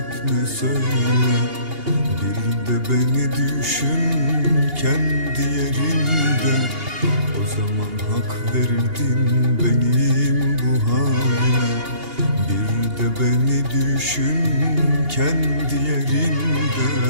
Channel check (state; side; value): late; left; 2.8 ms